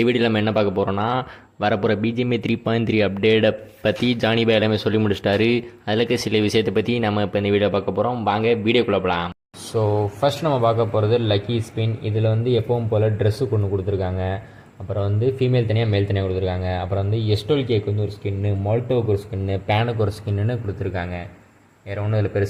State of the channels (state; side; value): identical; both; correlation 1.00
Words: வீடியோவில் நம்ம என்ன பார்க்க போகிறோன்னா, வரப்போகிற பிஜிஎம்ஏ 3.3 அப்டேட்டை பற்றி ஜானி பாய் எல்லாமே சொல்லி முடிச்சிட்டாரு. அதில் இருக்க சில விஷயத்தை பற்றி நம்ம இப்போ இந்த வீடியோ பார்க்க போகிறோம். வாங்க வீடியோக்குள்ளே போகலாம். ஸோ ஃபர்ஸ்ட் நம்ம பார்க்க போகிறது லக்கி ஸ்பின். இதில் வந்து எப்பவும் போல் ட்ரெஸ்ஸு கொண்டு கொடுத்துருக்காங்க. அப்புறம் வந்து ஃபீமேல் தனியாக மேல் தனியாக கொடுத்துருக்காங்க. அப்புறம் வந்து எஸ்டோல் கேக்கு வந்து ஒரு ஸ்கின்னு, மால்டோவுக்கு ஒரு ஸ்கின்னு, பேனுக்கு ஒரு ஸ்கின்னு கொடுத்துருக்காங்க. வேறு ஒன்றும் இதில்